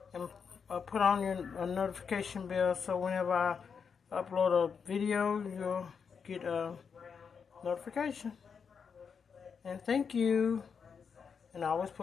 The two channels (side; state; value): right; quieter; 6.2 dB